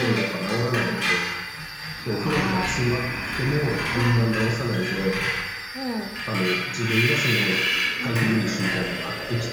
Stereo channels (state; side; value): identical; both; correlation 1.00